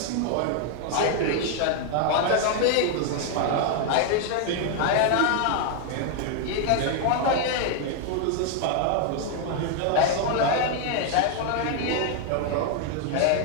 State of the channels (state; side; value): different; both; correlation 0.00